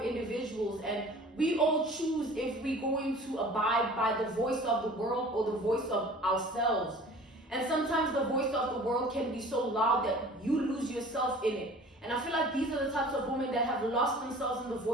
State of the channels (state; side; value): normal; both; correlation 0.45